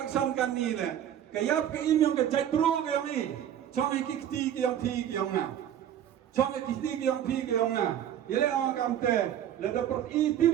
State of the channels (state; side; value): quieter; left; 10.4 dB